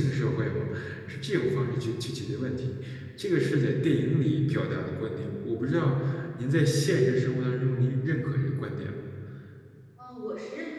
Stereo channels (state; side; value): identical; both; correlation 1.00